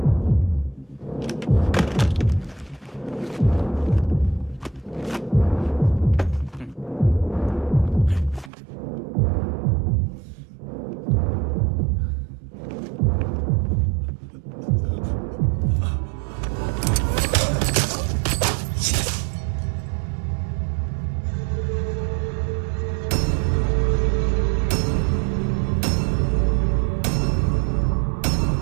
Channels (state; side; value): drops out; left; at 8.5 s